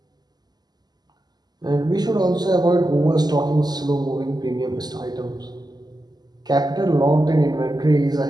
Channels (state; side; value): late; left; 0.20 ms